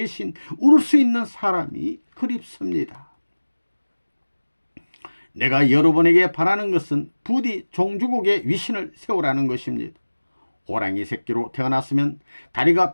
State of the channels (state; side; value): inverted; both; correlation -1.00